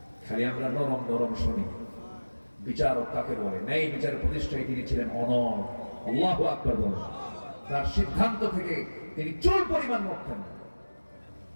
খালি আমরা নরম নরম শুনি। বিচারক কাকে বলে? ন্যায় বিচারের প্রতিষ্ঠায় তিনি ছিলেন অনড়। আল্লাহু আকবার বলেন। তার সিদ্ধান্ত থেকে তিনি চুল পরিমাণ নড়তেন না।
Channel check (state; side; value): inverted; both; correlation -1.00